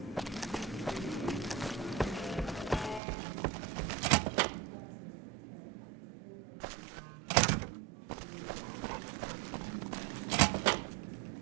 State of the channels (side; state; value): left; drops out; at 3.0 s